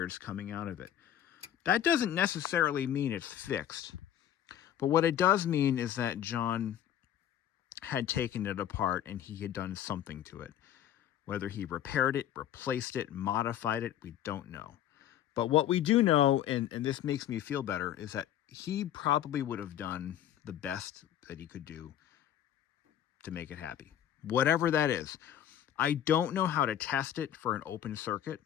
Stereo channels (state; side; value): quieter; right; 10.8 dB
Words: coming out of it. That doesn't necessarily mean it's fixed. But what it does mean is that John had taken it apart and he had done something to it. Whether he repaired it, replaced it, modified it, we don't know. But what we do know, and this makes me feel better, is that he probably would have done the best that he could do to make it happy. Whatever that is. I don't know how to test it for an open circuit.